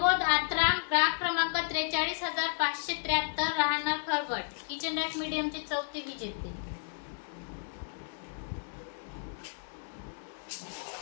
आत्राम, ग्राहक क्रमांक 43,573, राहणार खरवट, किचन रॅक मीडियमचे चौथे विजेते.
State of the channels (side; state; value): right; silent; digital silence